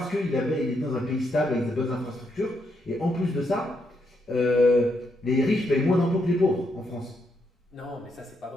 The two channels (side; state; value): both; normal; correlation 0.78